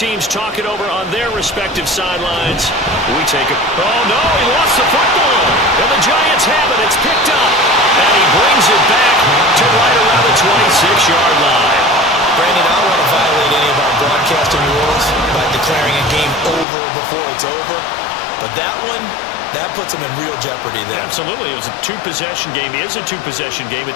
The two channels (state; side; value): drops out; right; at 16.7 s